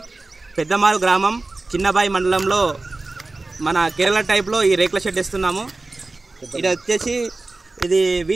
Peddamaru ग्रामं चिन्नबाई मंडలంలో మన కేరళ టైప్ లో ఈ రేకుల షెడ్ ఇస్తున్నాము। ఇది వచ్చేసి ఇది వి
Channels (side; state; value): left; quieter; 3.3 dB